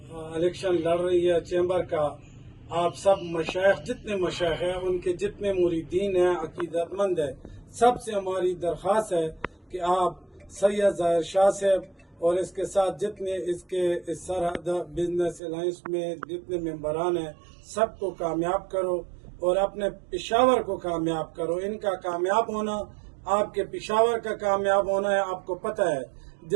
الیکشن لڑ رہی ہے چیمبر کا، آپ سب مشائخ، جتنے مشائخ ہیں، ان کے جتنے مریدین ہیں، عقیدت مند ہیں، سب سے ہماری درخواست ہے کہ آپ سید ظاہر شاہ صاحب اور اس کے ساتھ جتنے اس سرحد بزنس الائنس میں جتنے ممبران ہیں، سب کو کامیاب کرو اور اپنے پشاور کو کامیاب کرو۔ ان کا کامیاب ہونا آپ کے پشاور کا کامیاب ہونا ہے۔ آپ کو پتہ ہے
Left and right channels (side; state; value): left; drops out; at 15.4 s